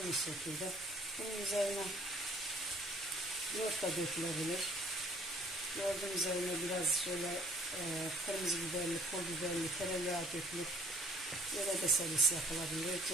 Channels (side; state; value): both; normal; correlation 0.55